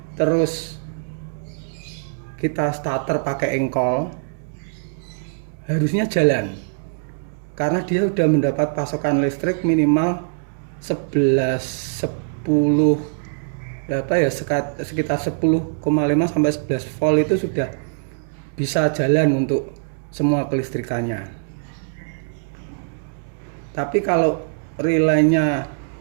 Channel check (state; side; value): silent; left; digital silence